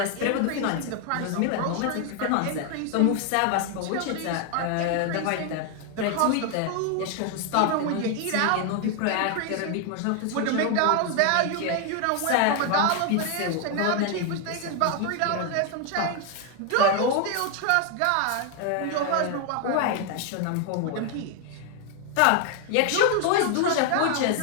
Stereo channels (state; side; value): different; both; correlation 0.00